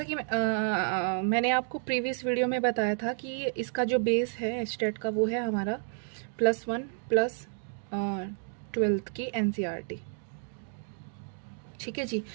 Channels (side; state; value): left; silent; 57 dB below the other